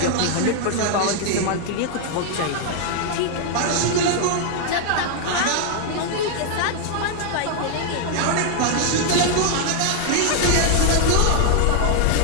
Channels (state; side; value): different; both; correlation 0.00